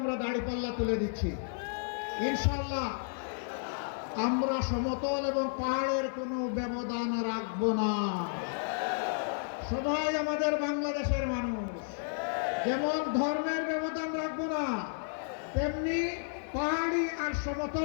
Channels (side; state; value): right; silent; 56 dB below the other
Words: দাড়িপাল্লা তুলে দিচ্ছি ইনশাআল্লাহ। আমরা সমতল এবং পাহাড়ের কোনো ব্যবধান রাখবো না। সবাই আমাদের বাংলাদেশের মানুষ, যেমন ধর্মের ব্যবধান রাখবো না, তেমনি পাহাড়ি আর